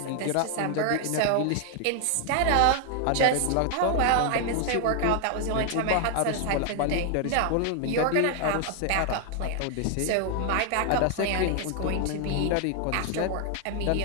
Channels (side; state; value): both; different; correlation 0.00